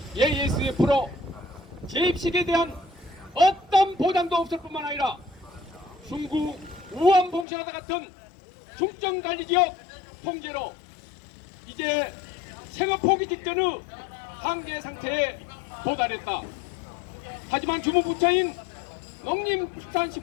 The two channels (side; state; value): right; drops out; at 7.5 s